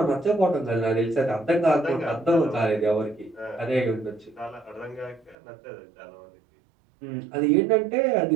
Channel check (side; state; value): left; drops out; at 5.4 s